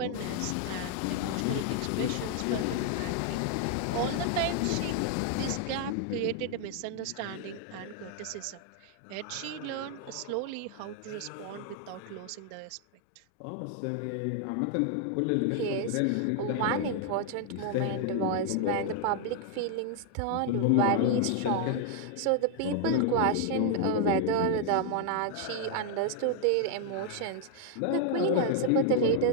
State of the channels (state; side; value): different; both; correlation 0.00